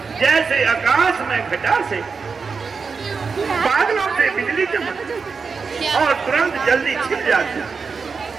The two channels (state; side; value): quieter; left; 5.1 dB